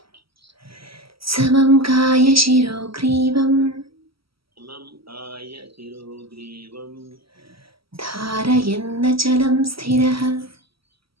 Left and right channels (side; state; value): left; late; 0.75 ms